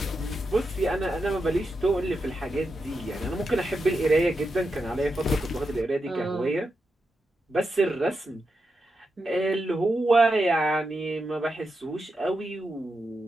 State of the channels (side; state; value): both; normal; correlation 0.87